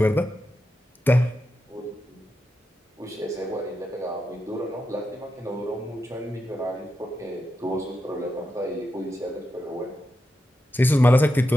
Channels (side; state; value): both; normal; correlation 0.88